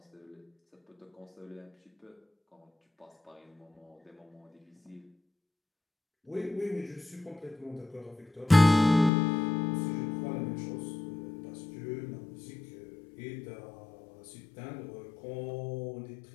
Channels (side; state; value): right; drops out; at 9.1 s